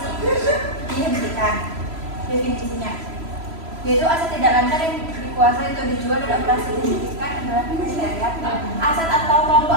dihentikan. Definisinya, yaitu aset tidak lancar yang dikuasai untuk dijual dan operasi dihentikan adalah kriteria aset atau kelompok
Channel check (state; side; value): late; left; 3.0 ms